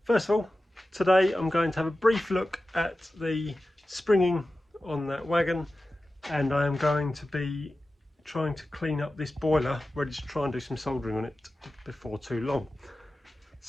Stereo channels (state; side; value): normal; both; correlation 0.94